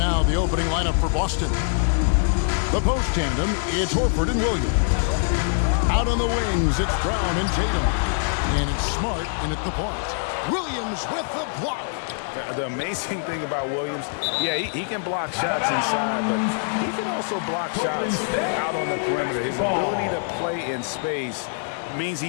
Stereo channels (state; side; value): silent; right; digital silence